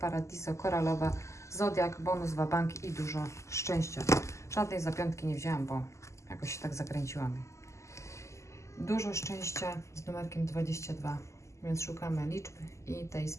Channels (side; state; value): right; late; 0.14 ms